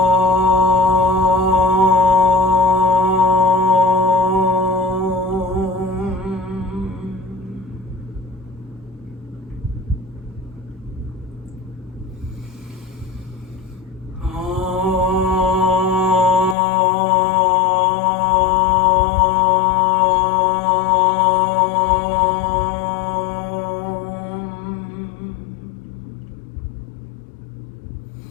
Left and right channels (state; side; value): drops out; right; at 16.6 s